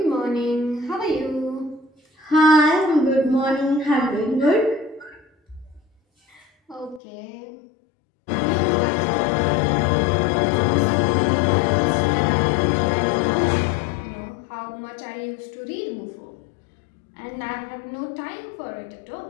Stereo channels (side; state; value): right; drops out; at 7.0 s